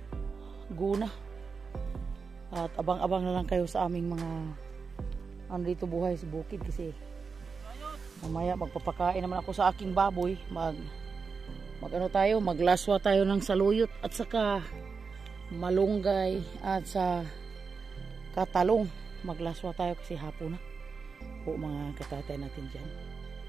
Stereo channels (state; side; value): quieter; left; 5.1 dB